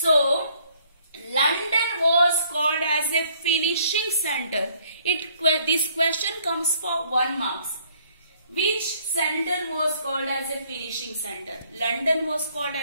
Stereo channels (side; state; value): both; inverted; correlation -0.63